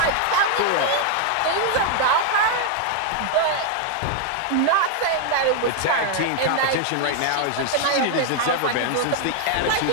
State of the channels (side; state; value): both; different; correlation 0.00